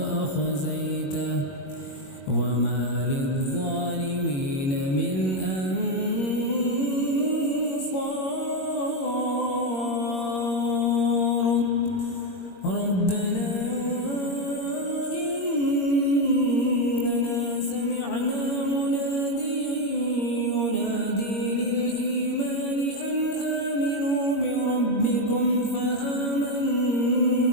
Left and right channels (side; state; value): right; late; 21 ms